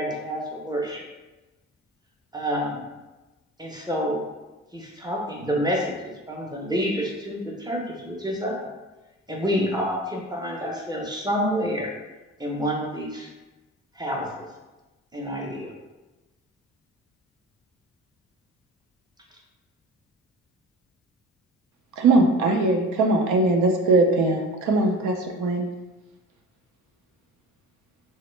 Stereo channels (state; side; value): normal; both; correlation 0.37